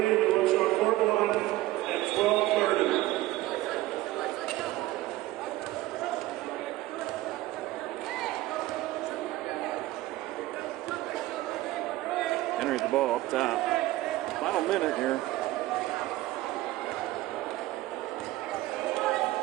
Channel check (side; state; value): left; quieter; 17.0 dB